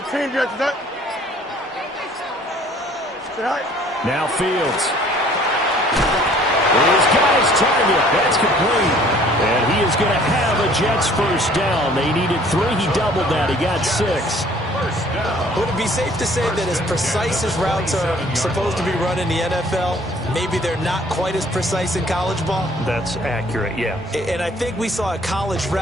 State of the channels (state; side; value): normal; both; correlation 0.56